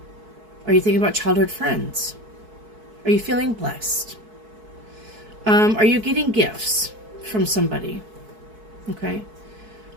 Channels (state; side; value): late; left; 4.6 ms